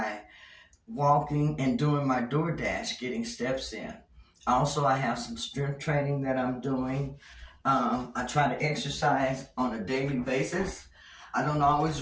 walking and doing my DoorDash, getting steps in. Also, I have some strength training that I'm doing. I try to exercise on a daily basis. I don't always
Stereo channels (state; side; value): identical; both; correlation 1.00